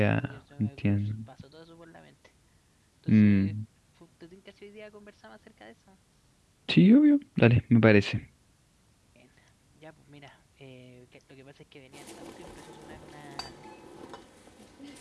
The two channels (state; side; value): identical; both; correlation 1.00